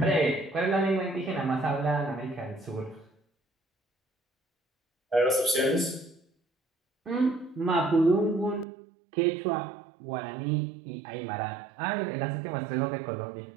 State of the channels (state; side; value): drops out; left; at 8.7 s